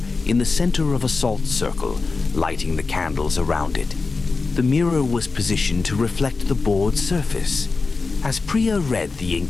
in the center of a salt circle, lighting the candles around it. The mirror was positioned to reflect the board's surface. As Priya read the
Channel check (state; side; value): quieter; right; 4.1 dB